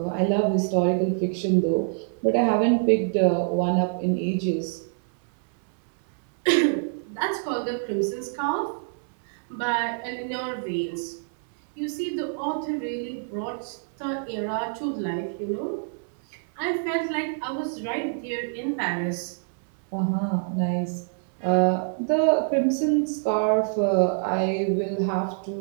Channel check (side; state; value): left; silent; 61 dB below the other